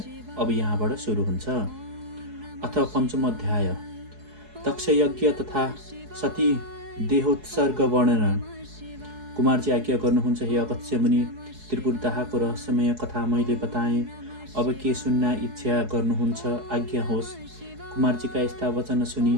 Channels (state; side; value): late; left; 4.7 ms